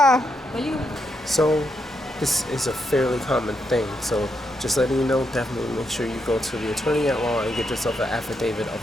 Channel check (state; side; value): normal; both; correlation 0.81